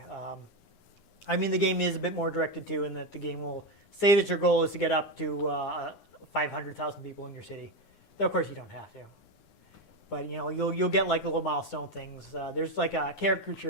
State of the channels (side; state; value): right; late; 9.8 ms